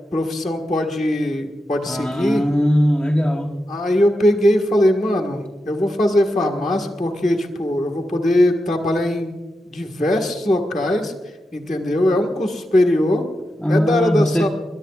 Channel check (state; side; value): normal; both; correlation 0.88